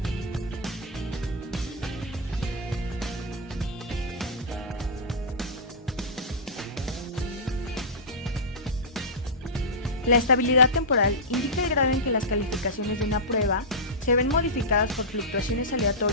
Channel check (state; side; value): normal; both; correlation -0.12